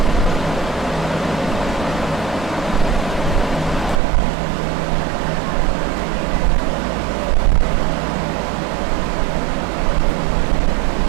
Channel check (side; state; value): left; drops out; at 4.0 s